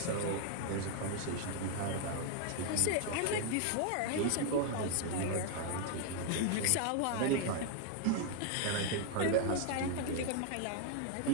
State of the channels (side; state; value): both; different; correlation 0.00